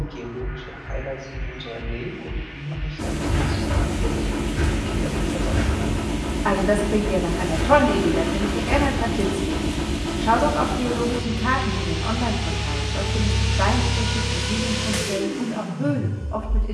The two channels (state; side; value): identical; both; correlation 1.00